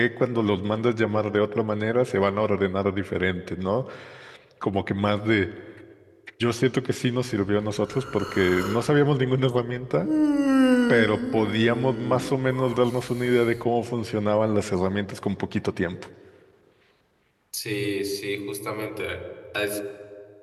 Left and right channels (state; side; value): identical; both; correlation 1.00